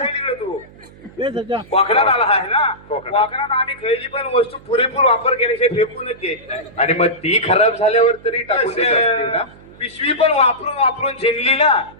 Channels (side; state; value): right; noise; hum, 23 dB below the sound